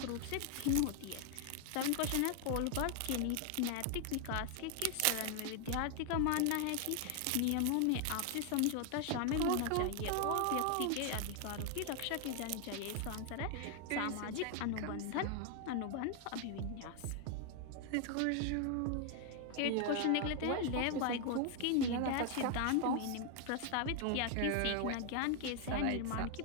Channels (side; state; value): both; different; correlation 0.00